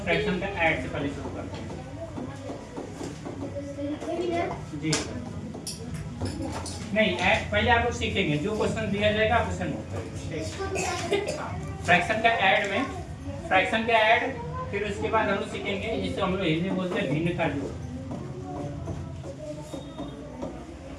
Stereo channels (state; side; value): identical; both; correlation 1.00